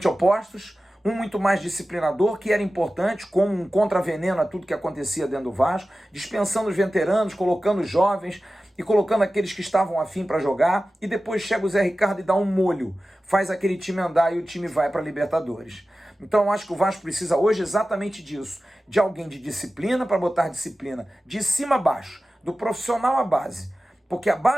opostos, um muito mais disciplinador, que era importante, como um contraveneno a tudo que acontecia dentro do Vasco, dispensando os veteranos, colocando os jovens e colocando aqueles que estavam afim para jogar, e depois chega o Zé Ricardo e dá um molho, faz aquele time andar e o time vai para a Libertadores. Então eu acho que o Vasco precisa hoje exatamente disso, de alguém de disciplina para botar disciplina de cima a baixo, do profissional à base. Porque a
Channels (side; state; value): both; normal; correlation 0.95